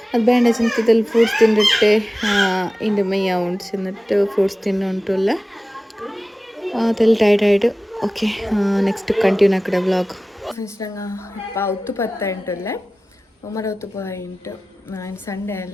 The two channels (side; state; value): both; normal; correlation 0.96